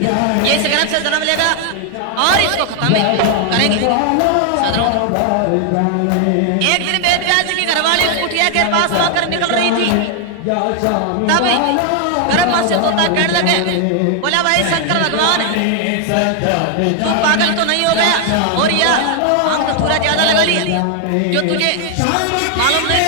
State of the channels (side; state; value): both; different; correlation 0.00